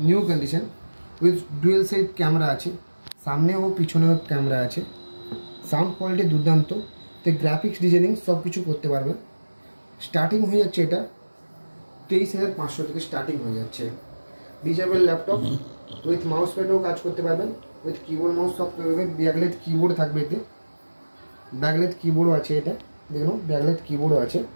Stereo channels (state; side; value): inverted; both; correlation -1.00